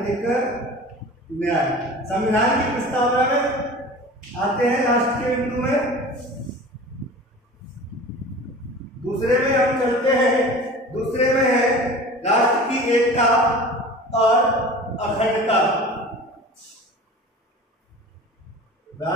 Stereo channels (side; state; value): both; normal; correlation 0.38